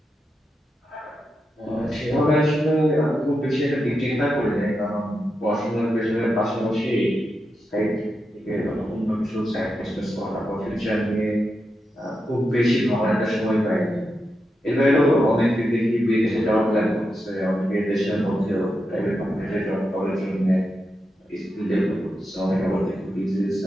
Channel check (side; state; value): both; normal; correlation 0.87